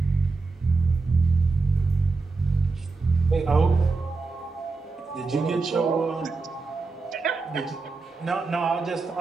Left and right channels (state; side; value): quieter; left; 3.9 dB